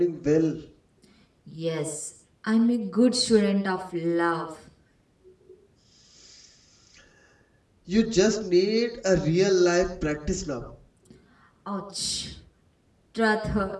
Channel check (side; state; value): both; identical; correlation 1.00